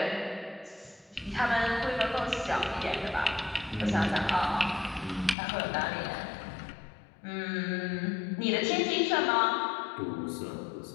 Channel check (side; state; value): right; drops out; at 5.4 s